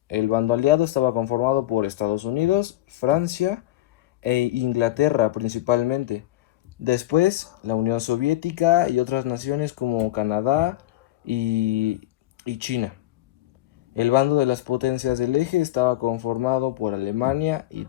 el bando aliado estaba conformado por Estados Unidos, Francia e Inglaterra principalmente. Después, la Unión Soviética y otras naciones como Canadá y China. El bando de las potencias del eje estaba conformado por Alemania,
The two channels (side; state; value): right; quieter; 15.6 dB